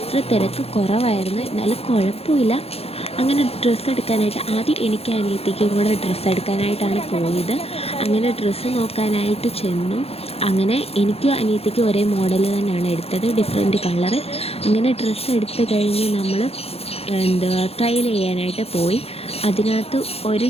തിരക്ക് കുറവായിരുന്നു, എന്നാലും കുഴപ്പമില്ല. അങ്ങനെ ഡ്രസ്സ് എടുക്കാനായിട്ട് ആദ്യം എനിക്ക് അനിയത്തിക്കും കൂടെ ഡ്രസ്സ് എടുക്കാനായിട്ടാണ് പോയത്. അങ്ങനെ ഡ്രസ്സ് നോക്കാനായിട്ട് ചെന്നു. അങ്ങനെ എനിക്കും അനിയത്തിക്കും ഒരേ മോഡൽ തന്നെയാണ് എടുത്തത്, ഡിഫറെൻറ്റ് കളറ്. അങ്ങനെ ഡ്രസ്സ് എടുത്ത് കഴിഞ്ഞ് നമ്മൾ ട്രയൽ ചെയ്യാനായിട്ട് പോയി. അതിനകത്ത് ഒരു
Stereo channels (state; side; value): late; right; 0.29 ms